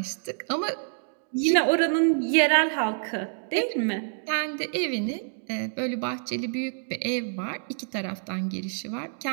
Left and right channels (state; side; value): silent; left; digital silence